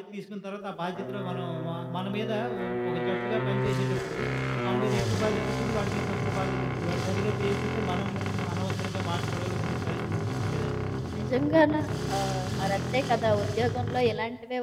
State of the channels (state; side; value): identical; both; correlation 1.00